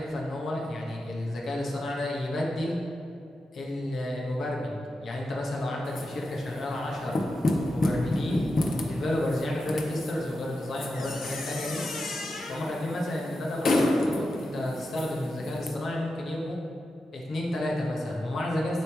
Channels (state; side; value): normal; both; correlation 0.89